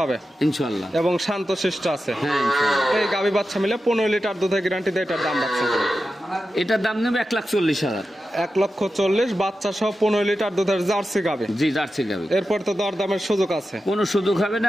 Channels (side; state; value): both; normal; correlation 0.91